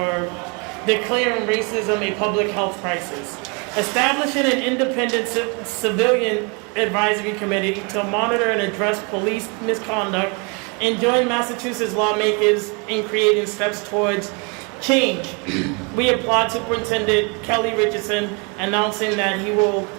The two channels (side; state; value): left; quieter; 32.7 dB